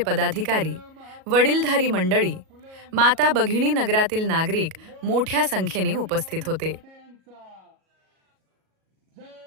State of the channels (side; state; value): left; late; 37 ms